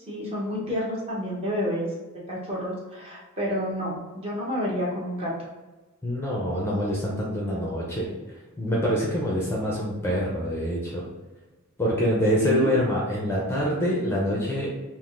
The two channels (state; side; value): normal; both; correlation 0.35